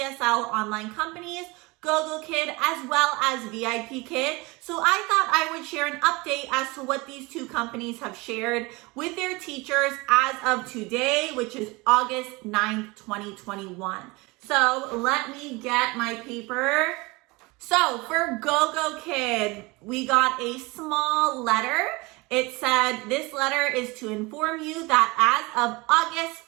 online companies, Gogokid as well as VipKid. So I thought I would share an update as to what these two companies have shared with their teachers as of today, which is August 9th, 2021. So let me get my paper. So for Gogokid, we got a small letter. It said, this letter is to inform you that as of August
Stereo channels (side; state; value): left; quieter; 24.4 dB